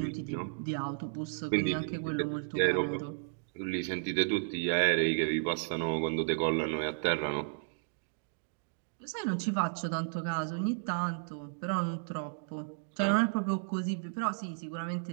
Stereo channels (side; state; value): left; silent; digital silence